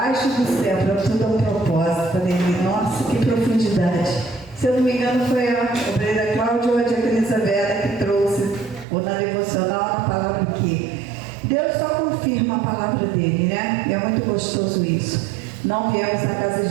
do céu, para tudo é um propósito. Falei, nossa, que profundidade. Se eu não me engano, foi a obreira Cláudia ou a diaconisa Vera que trouxe, ou na devocional, a palavra aqui. Deus só confirma a palavra dele, né? E é muito gostoso isso. Não viemos na casa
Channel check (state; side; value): drops out; left; at 8.8 s